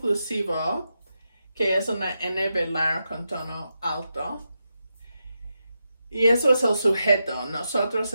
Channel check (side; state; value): both; inverted; correlation -0.87